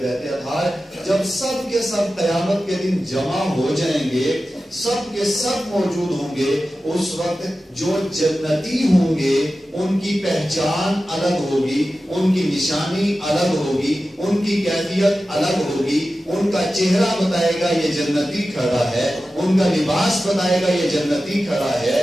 بیت اطہار، جب سب کے سب قیامت کے دن جمع ہو جائیں گے، سب کے سب موجود ہوں گے، اس وقت جو جنتی ہوں گے ان کی پہچان الگ ہوگی، ان کی نشانی الگ ہوگی، ان کی کیفیت الگ ہوگی، ان کا چہرہ بتائے گا یہ جنتی کھڑا ہے، ان کا لباس بتائے گا یہ جنتی کھڑا ہے،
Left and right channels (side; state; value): both; normal; correlation 0.94